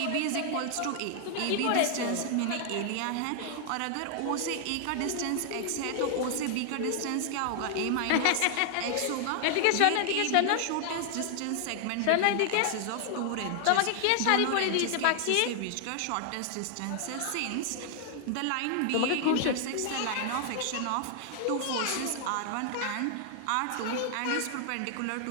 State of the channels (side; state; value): both; different; correlation 0.00